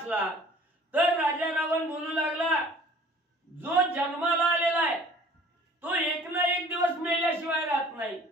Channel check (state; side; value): normal; both; correlation 0.50